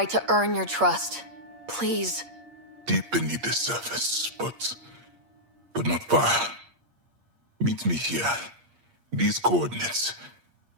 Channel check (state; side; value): late; left; 8.5 ms